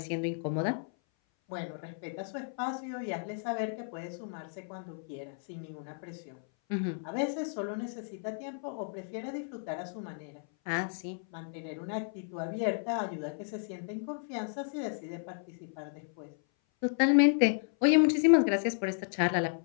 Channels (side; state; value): right; silent; 56 dB below the other